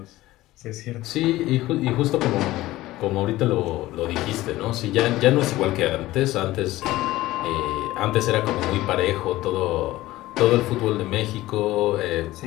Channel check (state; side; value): quieter; right; 16.9 dB